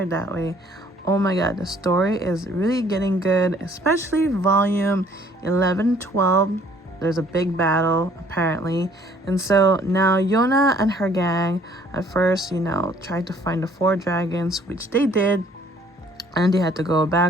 it that way. Oh my god, the story is really getting good, especially volume 11, 12. There's a big battle apparently, and so now Yona and her gang at first, tried to find the four dragons, which they did, and they had to go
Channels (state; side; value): normal; both; correlation 0.59